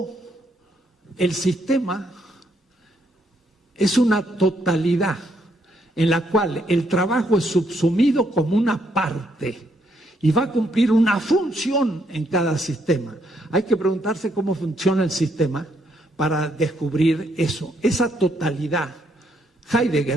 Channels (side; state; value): both; normal; correlation 0.73